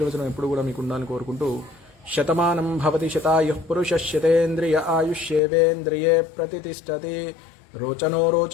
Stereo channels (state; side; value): drops out; right; at 5.4 s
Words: ఎప్పుడు కూడా మీకు ఉండాలని కోరుకుంటూ, శతమానం భవతి శతాయుః పురుషः శతేంద్రియ ఆయుష్యేవేంద్రియే ప్రతిష్టతి రోచనో